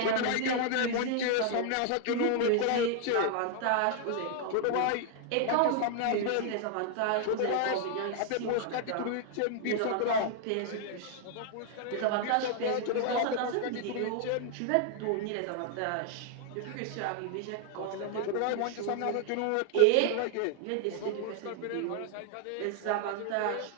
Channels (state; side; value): different; both; correlation 0.00